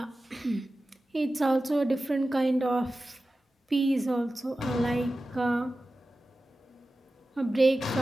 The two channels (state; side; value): normal; both; correlation 0.95